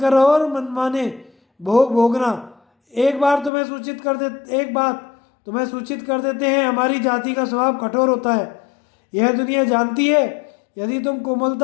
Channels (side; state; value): right; drops out; at 3.5 s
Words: रहो और मनमाने भोग भोगना। एक बात तुम्हें सूचित कर देते हैं, हमारी जाति का स्वभाव कठोर होता है। यह दुनिया जानती है। यदि तुम